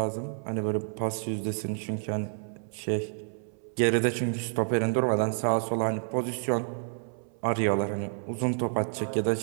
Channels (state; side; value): silent; left; 58 dB below the other